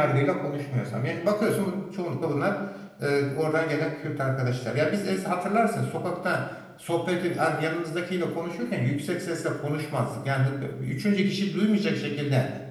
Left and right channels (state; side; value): identical; both; correlation 1.00